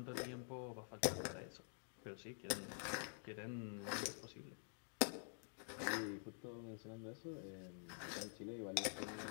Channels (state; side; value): silent; right; digital silence